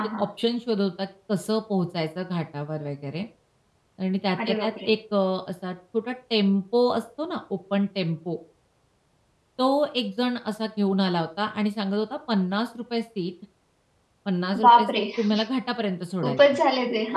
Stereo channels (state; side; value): identical; both; correlation 1.00